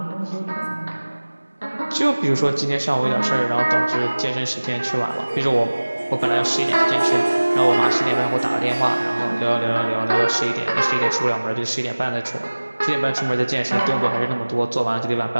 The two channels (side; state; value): both; inverted; correlation -1.00